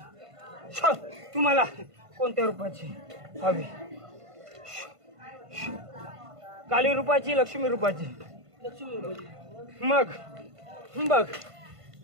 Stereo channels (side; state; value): left; late; 1.5 ms